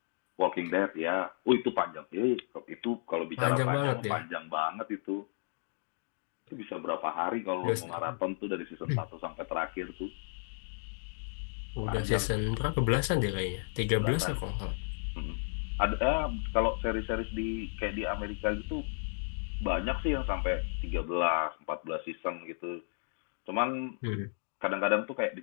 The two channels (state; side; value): silent; right; digital silence